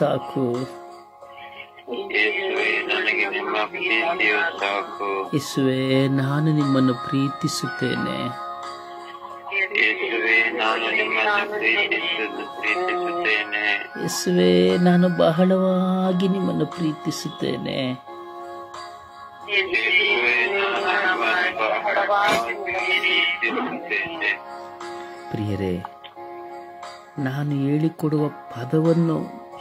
ಯೇಸುವೇ, ನಾನು ನಿಮ್ಮನ್ನು ಪ್ರೀತಿಸುತ್ತೇನೆ. ಯೇಸುವೇ, ನಾನು ಬಹಳವಾಗಿ ನಿಮ್ಮನ್ನು ಪ್ರೀತಿಸುತ್ತೇನೆ. ಪ್ರಿಯರೇ, ನಾನು ಹೇಳಿಕೊಡುವ ಪದವನ್ನು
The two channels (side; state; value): both; identical; correlation 1.00